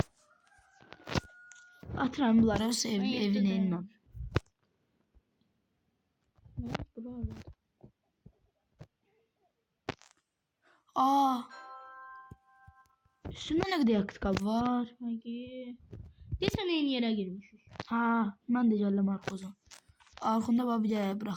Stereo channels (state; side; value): identical; both; correlation 1.00